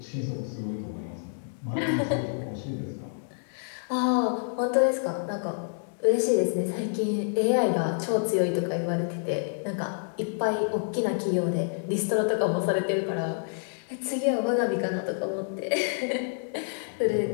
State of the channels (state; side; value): silent; right; digital silence